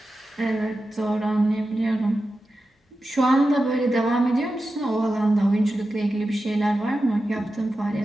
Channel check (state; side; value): normal; both; correlation 0.92